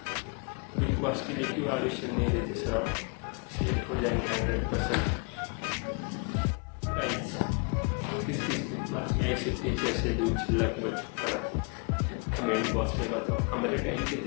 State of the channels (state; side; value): quieter; right; 34.9 dB